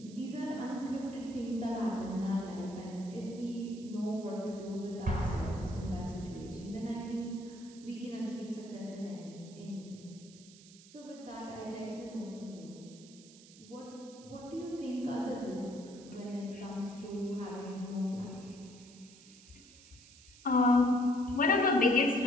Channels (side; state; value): right; noise; hiss, 21 dB below the sound